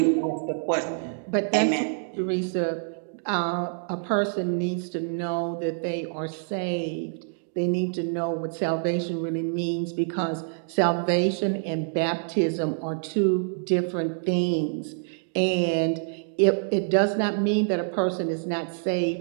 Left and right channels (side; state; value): left; silent; digital silence